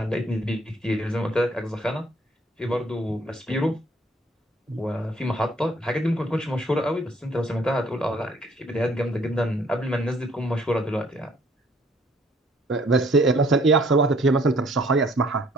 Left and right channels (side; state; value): both; normal; correlation 0.61